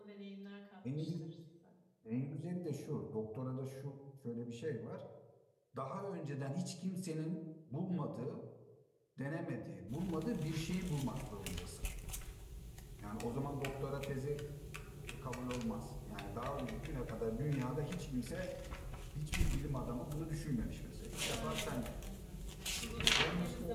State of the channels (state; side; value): identical; both; correlation 1.00